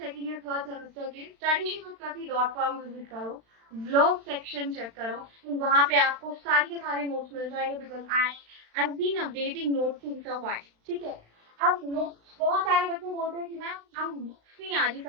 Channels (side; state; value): left; late; 35 ms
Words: या थर्ड सेमेस्टर के studyshubet.com विजिट करो, ब्लॉग सेक्शन चेक करो, वहां पे आपको सारे के सारे नोट्स मिल जाएंगे because I been updating notes since a while. ठीक है, अब नोट्स बहुत सारे बच्चे बोलते हैं कि मैम हम बुक्स नहीं आ रही